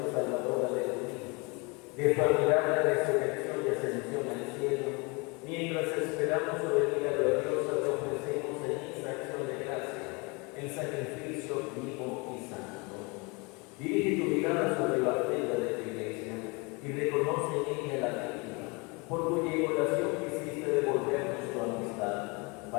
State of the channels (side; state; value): right; quieter; 28.9 dB